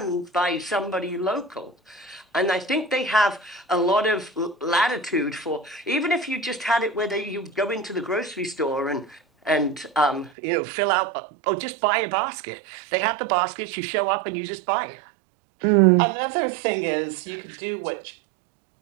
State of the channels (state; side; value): drops out; left; at 10.3 s